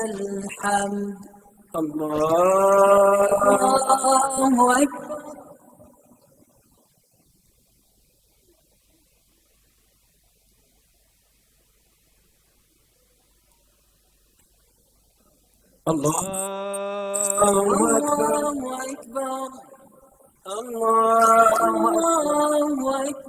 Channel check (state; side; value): identical; both; correlation 1.00